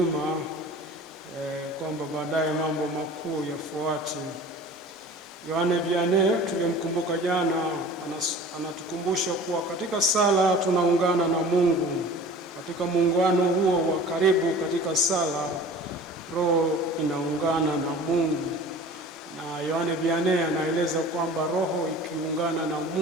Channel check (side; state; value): both; normal; correlation 0.42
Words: kwamba baadaye mambo makuu yafuate. Yohane Vianney tulimkumbuka jana, anatukumbusha kuwa katika sala tunaungana na Mungu. Katika muungano huo wa karibu katika sala, roho inaungana na Mungu. Na Yohane Vianney anaeleza kwamba roho ikiungana na